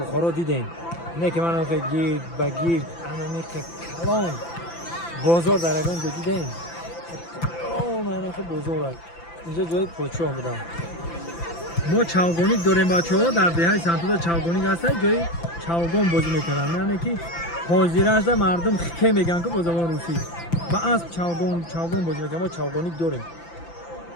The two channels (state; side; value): late; right; 5.9 ms